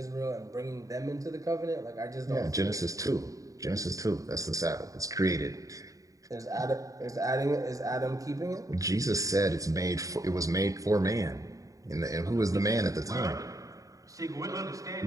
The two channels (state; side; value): late; left; 0.16 ms